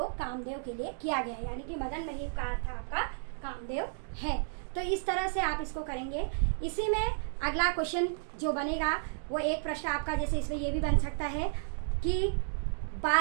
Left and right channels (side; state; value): left; silent; digital silence